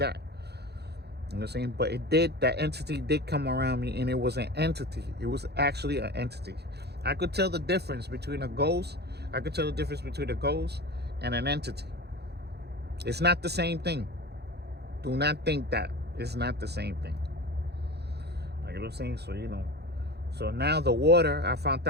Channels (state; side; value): late; left; 0.48 ms